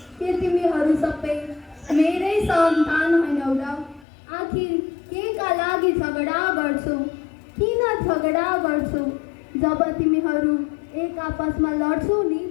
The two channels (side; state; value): right; drops out; at 4.0 s